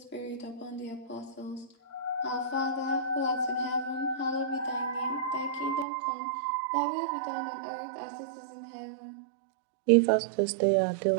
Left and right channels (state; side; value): drops out; left; at 5.9 s